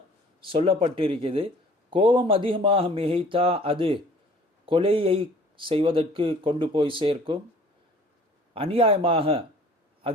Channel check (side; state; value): both; normal; correlation 0.51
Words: சொல்லப்பட்டிருக்கிறது. கோபம் அதிகமாக மிகைத்தா அது கொலையை செய்வதற்கு கொண்டு போய் சேர்க்கும். அநியாயமாக